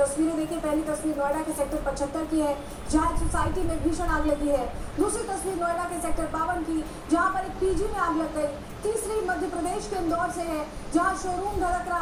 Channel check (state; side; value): identical; both; correlation 1.00